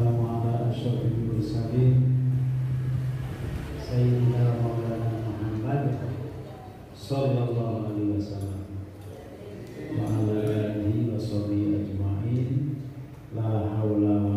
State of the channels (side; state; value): both; identical; correlation 1.00